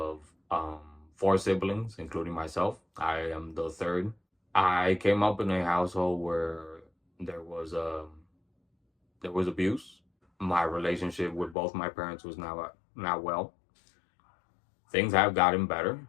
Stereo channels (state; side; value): drops out; right; at 11.6 s